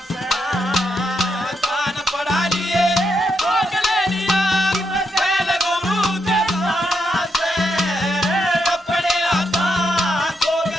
से कान पढ़ा लिए भोग ले लिया खेल गुरु के दाना से अपने हाथा जोग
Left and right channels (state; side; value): normal; both; correlation 0.81